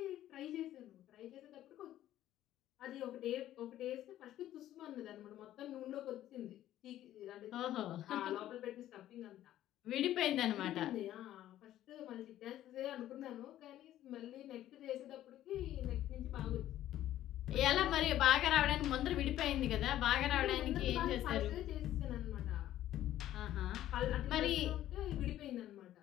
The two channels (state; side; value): quieter; right; 12.9 dB